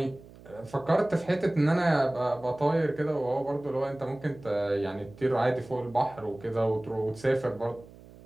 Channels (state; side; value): noise; right; hum, 21 dB below the sound